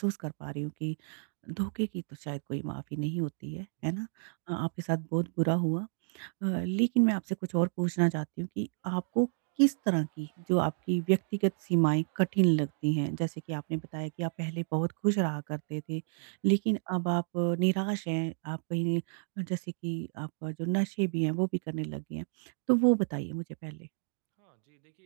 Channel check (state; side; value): silent; left; digital silence